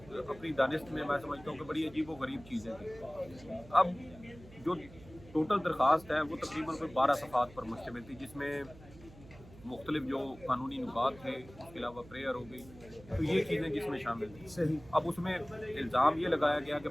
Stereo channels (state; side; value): noise; right; hum, 20 dB below the sound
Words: اپنی دانست میں سمجھتا ہوں کہ بڑی عجیب و غریب چیزیں تھیں۔ اب جو ٹوٹل درخواست ہے وہ تقریباً کوئی 12 صفحات پر مشتمل تھی، جس میں مختلف جو قانونی نکات تھے، اس کے علاوہ پریئر ہو گئی، تو یہ چیزیں جس میں شامل تھیں۔ اب اس میں الزام یہ لگایا گیا کہ